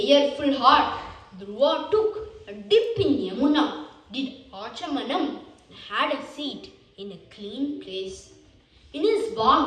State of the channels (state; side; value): identical; both; correlation 1.00